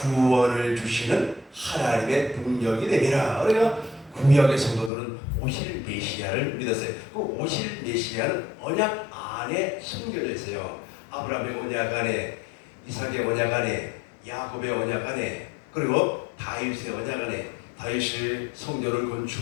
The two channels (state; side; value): drops out; right; at 4.9 s